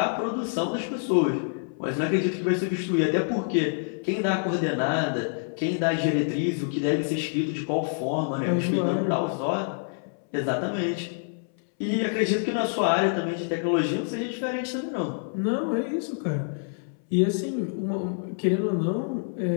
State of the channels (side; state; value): right; silent; 60 dB below the other